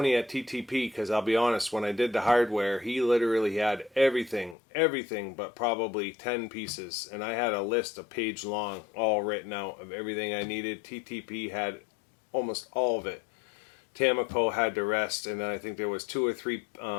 at TTP, because I'll be honest, when I did the hardware, he literally had everything but probably 10 pieces. And I had a list a page long, all written out of everything I needed. TTP had almost all of it. Tamico had the rest, and then I think there was 2 or 3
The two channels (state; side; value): drops out; right; at 4.5 s